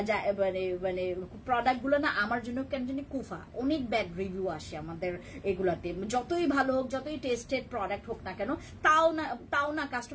মানে প্রোডাক্ট গুলো না আমার জন্য কেন জানি কুফা। অনেক ব্যাড রিভিউ আসে আমাদের এগুলাতে, যতই ভালো হোক, যতই টেস্টেড প্রোডাক্ট হোক না কেন, তাও না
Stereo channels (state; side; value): identical; both; correlation 1.00